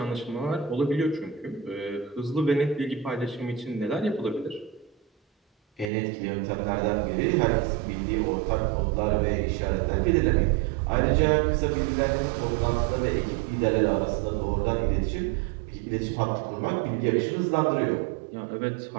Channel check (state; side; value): drops out; left; at 5.9 s